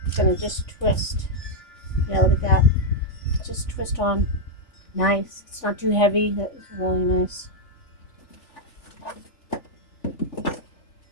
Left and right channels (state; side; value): late; right; 3.5 ms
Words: going to just twist. Yeah, look at that. Just twist on. Nice. It's not too heavy. That's really nice.